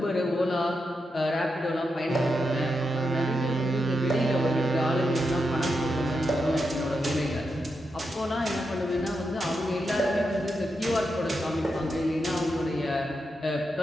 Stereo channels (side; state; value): both; normal; correlation 0.86